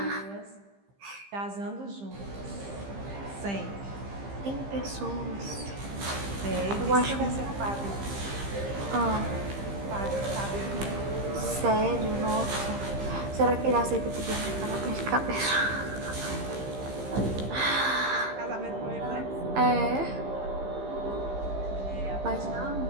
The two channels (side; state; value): left; late; 15 ms